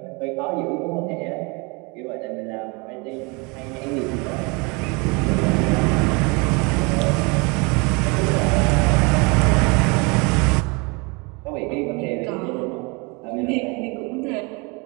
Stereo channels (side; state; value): left; quieter; 29.1 dB